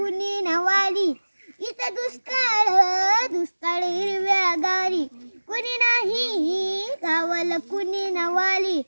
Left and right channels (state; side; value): inverted; both; correlation -1.00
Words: नवाली इथं दुष्काळ दुष्काळ हिरव्या गाळी कुणी नाही गावाला कुणी नवाली